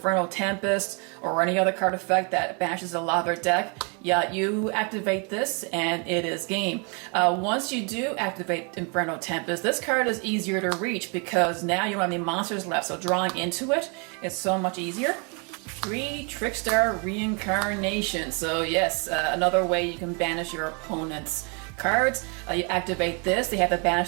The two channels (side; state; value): left; quieter; 35.1 dB